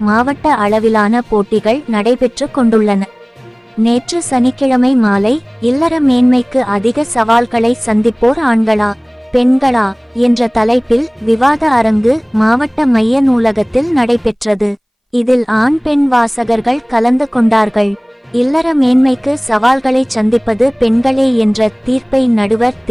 மாவட்ட அளவிலான போட்டிகள் நடைபெற்று கொண்டுள்ளன. நேற்று சனிக்கிழமை மாலை இல்லற மேன்மைக்கு அதிக சவால்களை சந்திப்போர் ஆண்களா பெண்களா என்ற தலைப்பில் விவாத அரங்கு மாவட்ட மைய நூலகத்தில் நடைபெற்றது. இதில் ஆண் பெண் வாசகர்கள் கலந்து கொண்டார்கள். இல்லற மேன்மைக்கு சவால்களை சந்திப்பது பெண்களே என்ற தீர்ப்பை நடுவர்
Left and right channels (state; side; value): identical; both; correlation 1.00